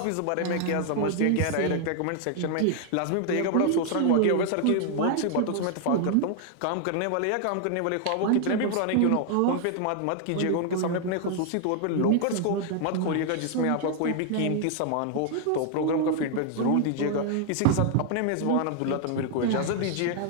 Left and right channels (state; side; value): different; both; correlation 0.00